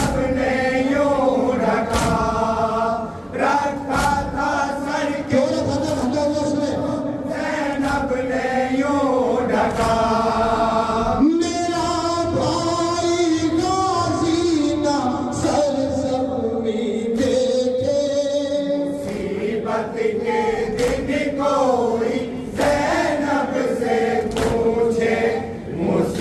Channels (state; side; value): identical; both; correlation 1.00